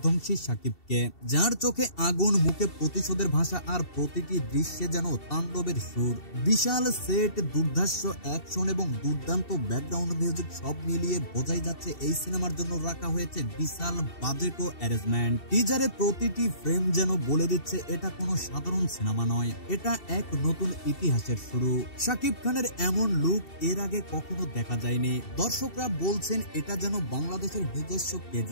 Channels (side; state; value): right; late; 2.7 ms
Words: শাকিবকে, যার চোখে আগুন, মুখে প্রতিশোধের ভাষা, আর প্রতিটি দৃশ্যে যেন তাণ্ডবের সুর। বিশাল সেট, দুর্ধর্ষ অ্যাকশন এবং দুর্দান্ত ব্যাকগ্রাউন্ড মিউজিক সব মিলিয়ে বোঝাই যাচ্ছে এই সিনেমার জন্য রাখা হয়েছে বিশাল বাজেট ও অ্যারেঞ্জমেন্ট। টিজারে প্রতিটি ফ্রেম যেন বলে দিচ্ছে এটা কোনো সাধারণ সিনেমা নয়, এটা এক নতুন ইতিহাসের শুরু। শাকিব খানের এমন লুক এর আগে কখনো দেখা যায়নি। দর্শকরা বলছেন এটা যেন বাংলাদেশের নিজস্ব